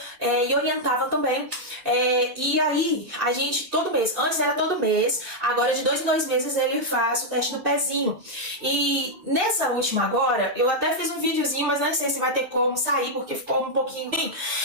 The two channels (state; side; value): late; left; 2.6 ms